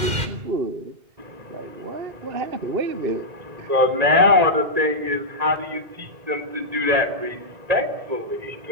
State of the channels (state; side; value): late; left; 1.9 ms